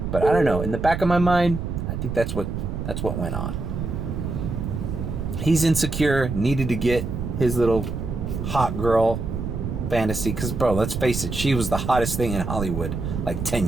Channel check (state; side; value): noise; right; rumble, 4 dB below the sound